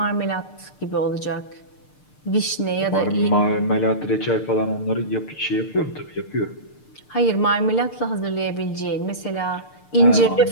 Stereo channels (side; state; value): right; late; 6.7 ms